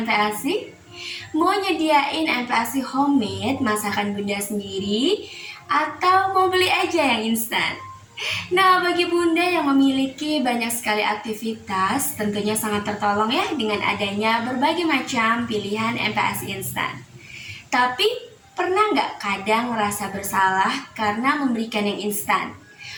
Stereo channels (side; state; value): both; identical; correlation 1.00